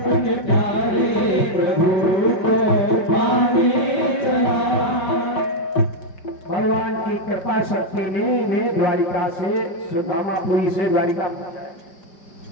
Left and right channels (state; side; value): late; right; 5.2 ms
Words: प्यारे प्रभु को पाने चला। भगवान की कृपा शक्ति ने इन्हें द्वारिका से सुदामापुरी से द्वारिका पहुंचाया।